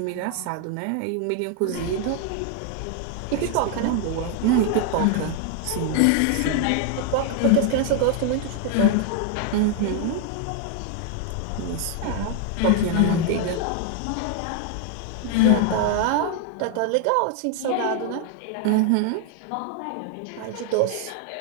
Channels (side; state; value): both; different; correlation 0.00